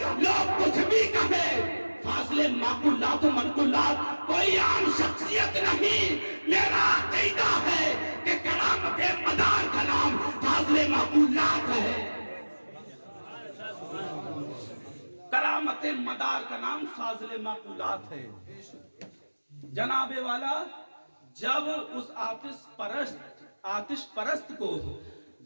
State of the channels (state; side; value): inverted; both; correlation -1.00